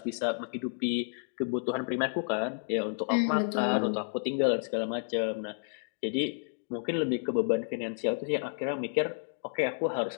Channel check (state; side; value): silent; right; digital silence